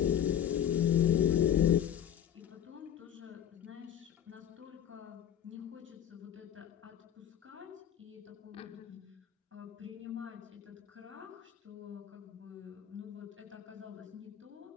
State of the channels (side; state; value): right; quieter; 9.9 dB